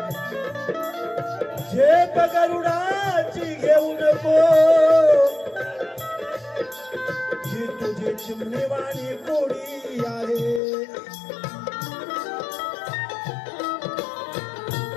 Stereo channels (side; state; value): right; drops out; at 10.6 s